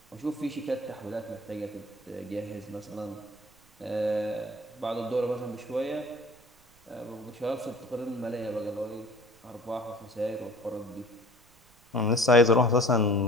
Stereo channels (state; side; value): noise; right; rumble, 29 dB below the sound